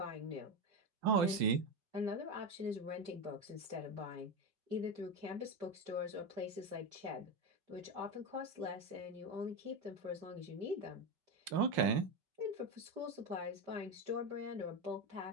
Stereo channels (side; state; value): left; late; 5.7 ms